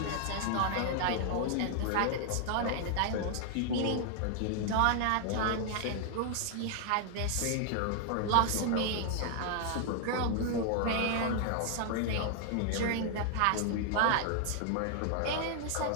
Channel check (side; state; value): both; different; correlation 0.00